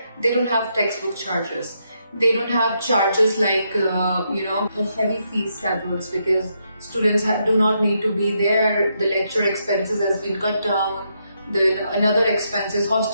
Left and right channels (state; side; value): inverted; both; correlation -0.79